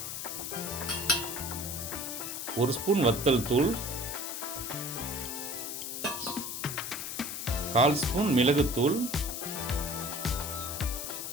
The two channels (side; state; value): left; noise; hiss, 5 dB below the sound